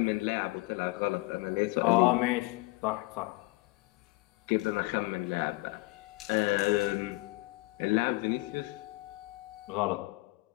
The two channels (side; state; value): right; quieter; 23.4 dB